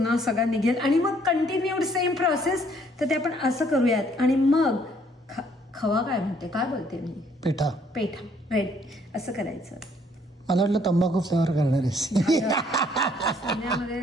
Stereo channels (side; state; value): both; normal; correlation 0.64